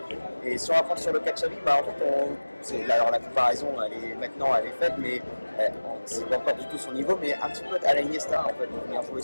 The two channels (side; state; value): both; inverted; correlation -1.00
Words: Et si on va prendre sur le cas de Xavi, bah, en fait, alors la comparaison, elle est faite, mais c'est pas encore du tout son niveau, mais un petit peu à la Iniesta, en fait, de venir jouer